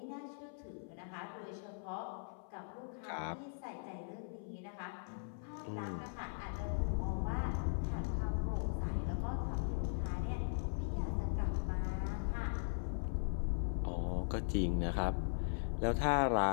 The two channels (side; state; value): right; silent; 51 dB below the other